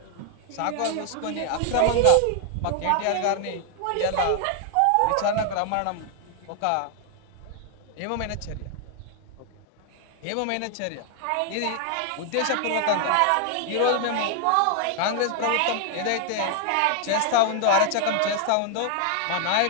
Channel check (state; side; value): different; both; correlation 0.00